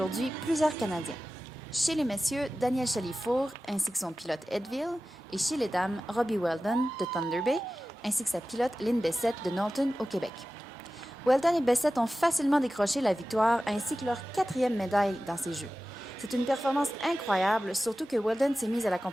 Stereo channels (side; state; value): both; normal; correlation 0.95